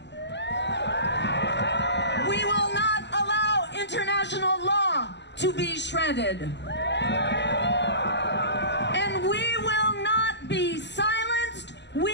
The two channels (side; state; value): right; late; 0.51 ms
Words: We will not allow international law to be shredded. And we will not be silenced.